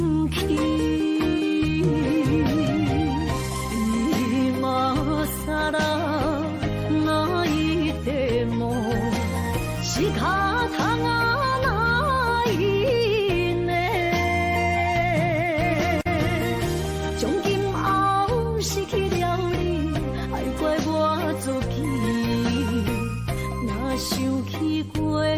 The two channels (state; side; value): identical; both; correlation 1.00